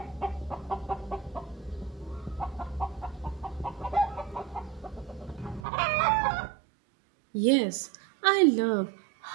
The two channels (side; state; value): left; drops out; at 5.7 s